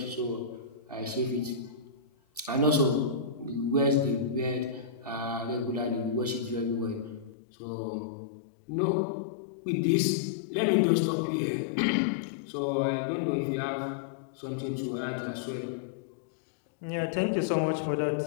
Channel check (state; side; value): drops out; right; at 7.3 s